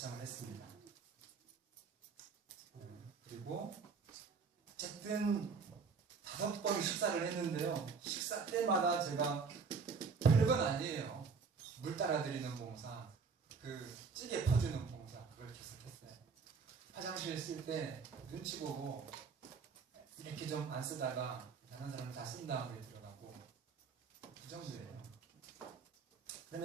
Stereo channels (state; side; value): quieter; left; 5.3 dB